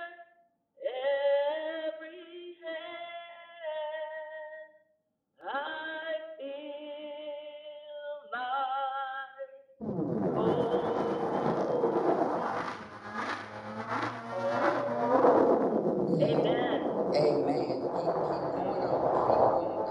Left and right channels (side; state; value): both; identical; correlation 1.00